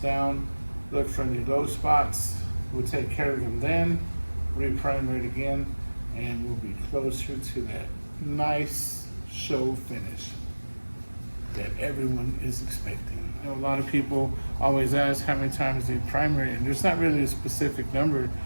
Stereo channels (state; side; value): inverted; both; correlation -1.00